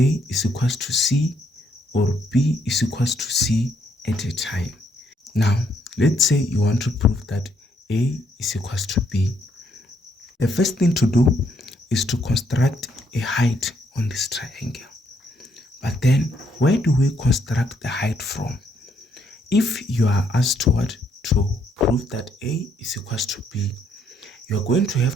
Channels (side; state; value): both; normal; correlation 0.72